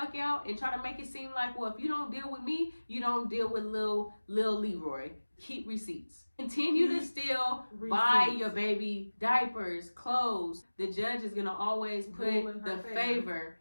out and try to make it seem like, well, if you don't deal with me, you don't deal with Lil Leroy. Keep receipts. Continue to still buy your baby diapers, clothes. The judge is gonna always put the favor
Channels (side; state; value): both; inverted; correlation -1.00